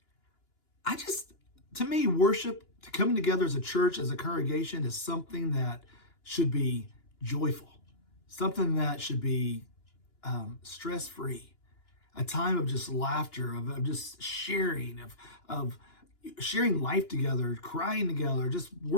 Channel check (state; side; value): late; right; 2.9 ms